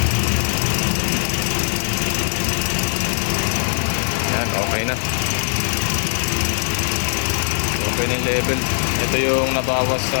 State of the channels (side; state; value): right; silent; 66 dB below the other